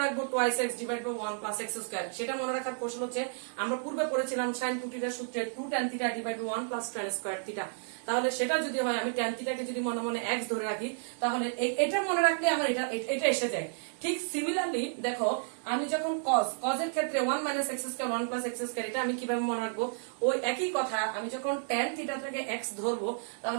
রাখবো 2x divide by 1 plus x square, সেটা মনে রাখার কৌশল হচ্ছে, আমরা পূর্বে পড়েছিলাম sin 2 থিটার সূত্রে 2 tan theta divide by 1 plus tan square theta. তাহলে সেটা যদি হয়, আমি tan থিটাকে যদি মনে মনে x ধরে রাখি, তাহলে এটা মনে রাখলে আমার এটা এসে যায়। ঠিক সিমিলারলি দেখো, আমি যখন cos এর ক্ষেত্রে 1 minus x square 1 plus x square, এটা আমি কিভাবে মনে রাখবো? ওই একই কথা, আমি যখন tan থিটা থেকে x ধরবো,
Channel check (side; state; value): left; silent; digital silence